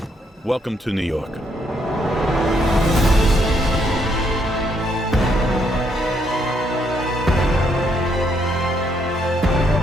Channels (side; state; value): both; normal; correlation 0.73